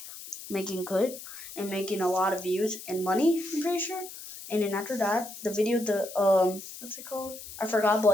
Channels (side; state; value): left; noise; hiss, 13 dB below the sound